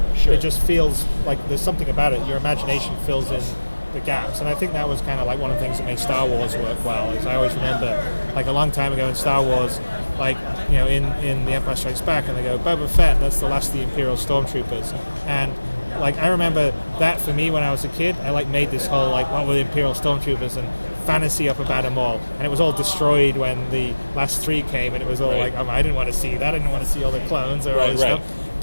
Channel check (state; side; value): inverted; both; correlation -1.00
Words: Sure. It just feels like there's something about it. Your imagination fills in the gaps, and I think that was kind of like one of the things that made Star Wars work well. Is I always remember, like a long time ago in Star Wars, like in The Empire Strikes Back, and they go, Boba Fett, that's the last of the Imperial Stormtroopers, and like I remember that for me when I was a kid, I like made this whole like what were the Imperial Stormtroopers and fantasy up about them all, and it was all destroyed when the last 3 came, and it was all like, I didn't want to see that, I didn't want to see all the clones or all this stuff.